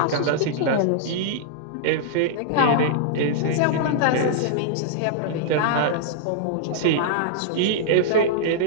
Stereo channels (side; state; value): both; different; correlation -0.02